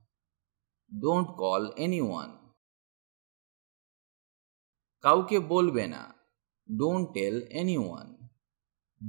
Don't call anyone. কাউকে বলবে না। Don't tell anyone.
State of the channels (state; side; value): silent; left; digital silence